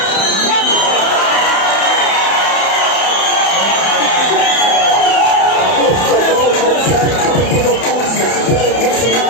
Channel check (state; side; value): late; right; 31 ms